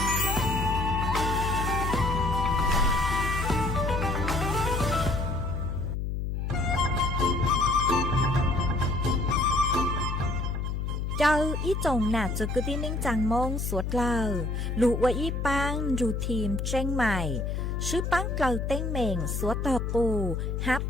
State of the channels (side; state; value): left; noise; hum, 2 dB below the sound